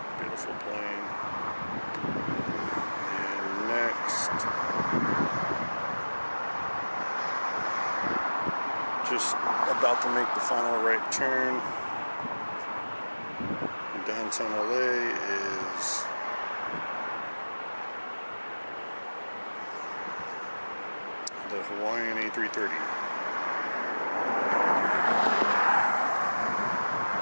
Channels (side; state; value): both; inverted; correlation -1.00